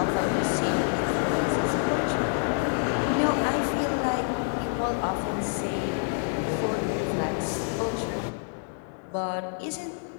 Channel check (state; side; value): silent; right; 60 dB below the other